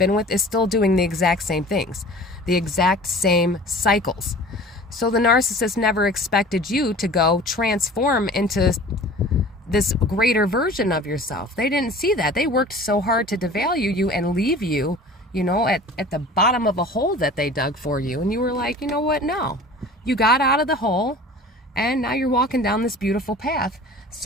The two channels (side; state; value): both; normal; correlation 0.43